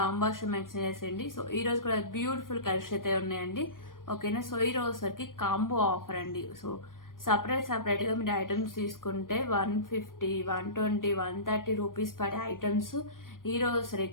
మెన్షన్ చేసేయండి. సో ఈ రోజు కూడా బ్యూటిఫుల్ కలెక్షన్ అయితే ఉన్నాయండి. ఓకేనా. సో ఈ రోజు సరికి కాంబో ఆఫర్ అండి. సో సపరేట్ గా మీరు ఐటమ్స్ తీసుకుంటే 150, 120, 130 రూపీస్ పడే ఐటమ్స్ ఈ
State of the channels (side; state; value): right; late; 0.91 ms